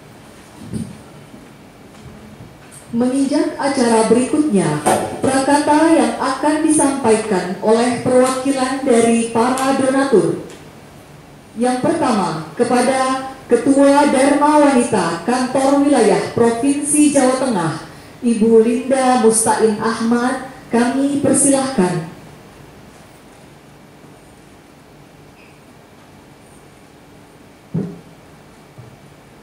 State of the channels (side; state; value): both; identical; correlation 1.00